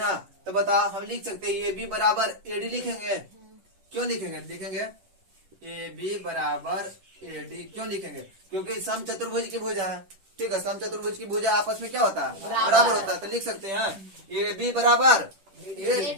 तो बताओ हम लिख सकते हैं AB बराबर AD लिखेंगे। क्यों लिखेंगे, लिखेंगे AB बराबर AD क्यों लिखेंगे, क्योंकि सम चतुर्भुज की भुजा है, ठीक है। सम चतुर्भुज की भुजा आपस में क्या होता है, बराबर होता है। तो लिख सकते हैं AB बराबर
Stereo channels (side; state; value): left; late; 10 ms